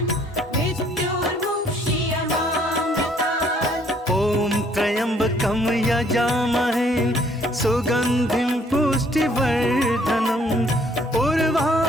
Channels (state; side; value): normal; both; correlation 0.63